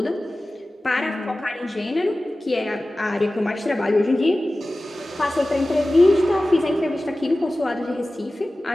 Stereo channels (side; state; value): both; normal; correlation 0.96